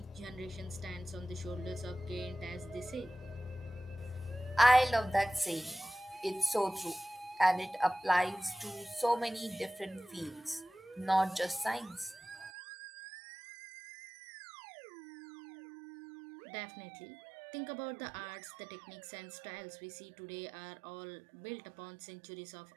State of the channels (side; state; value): left; drops out; at 12.5 s